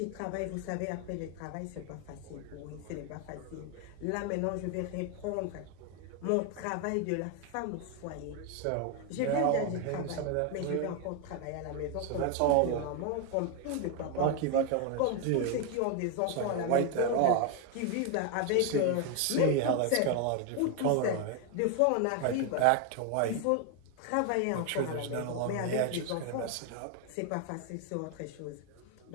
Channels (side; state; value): both; different; correlation 0.01